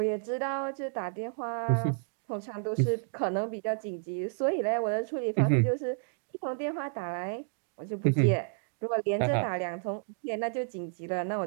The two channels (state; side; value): silent; left; digital silence